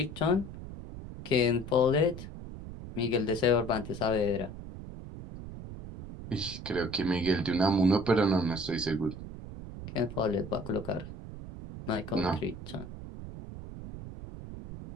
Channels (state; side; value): noise; right; rumble, 11 dB below the sound